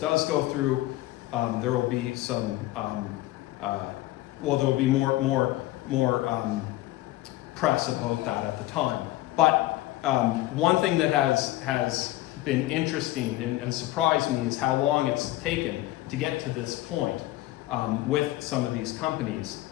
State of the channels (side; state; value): right; quieter; 16.8 dB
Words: go through, there will be some well, there will be more press about that at the time. But one thing that has been interesting and surprised me is how long it's taken to get to this point with some of these companies.